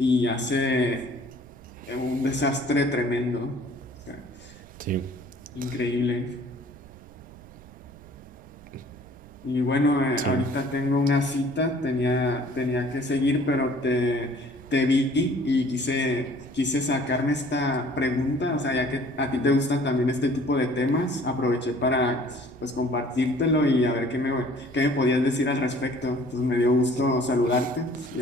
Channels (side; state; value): right; noise; rumble, 22 dB below the sound